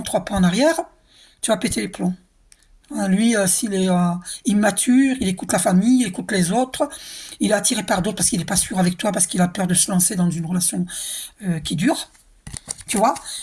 trois pas en arrière, tu vas péter les plombs. Lui, s'il est immature, il écoute la famille, il écoute les autres, il est attiré par d'autres parce qu'il n'est pas sûr avec toi, parce qu'il a peur de se lancer dans une relation qui dure, tu vois.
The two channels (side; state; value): both; identical; correlation 1.00